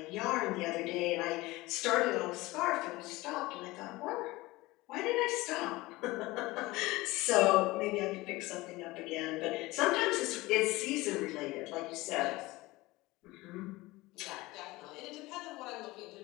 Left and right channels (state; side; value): quieter; right; 20.3 dB